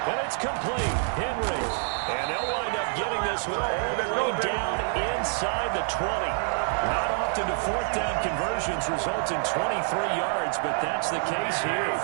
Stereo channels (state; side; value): silent; left; 56 dB below the other